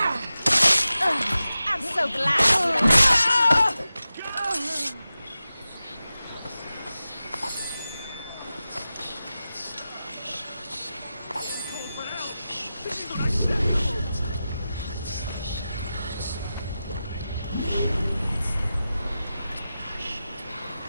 I'm so glad.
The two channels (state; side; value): inverted; both; correlation -0.93